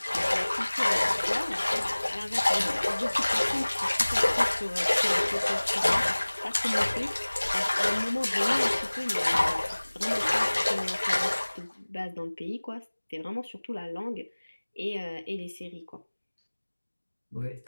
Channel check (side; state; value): both; inverted; correlation -1.00